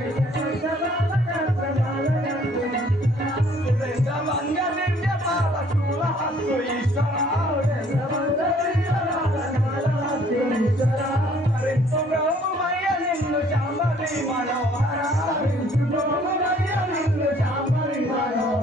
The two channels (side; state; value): both; normal; correlation 0.59